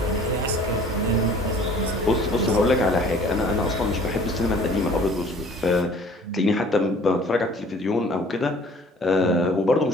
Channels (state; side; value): normal; both; correlation 0.51